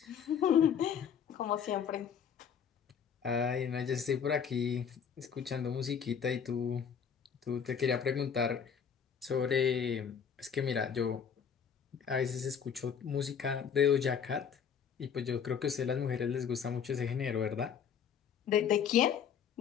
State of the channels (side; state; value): right; quieter; 7.4 dB